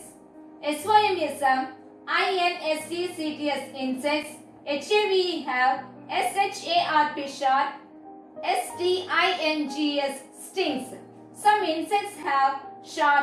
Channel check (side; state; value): both; identical; correlation 1.00